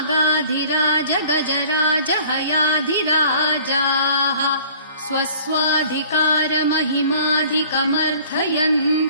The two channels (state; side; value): inverted; both; correlation -0.50